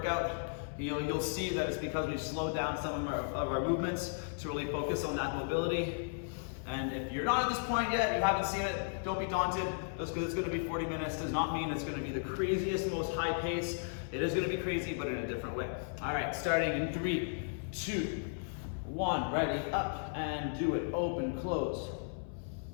you'll see that it's because we've slowed down some of our movements to really focus on that mobility. And if you're not at this point yet, you haven't seen it, don't be daunted. Just because it's going to be 40 minutes does not mean it's going to be the craziest, most high pace. It is going to be crazy, but in a different way. All right, starting in 3, 2, 1. Ready, up and do it. Open, close.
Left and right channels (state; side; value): silent; right; 54 dB below the other